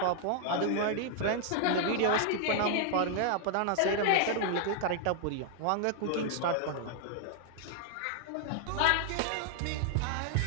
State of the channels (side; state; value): both; different; correlation 0.00